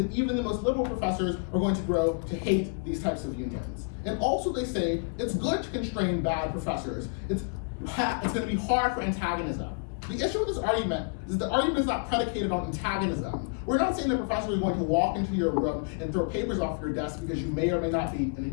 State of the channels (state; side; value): quieter; right; 39.2 dB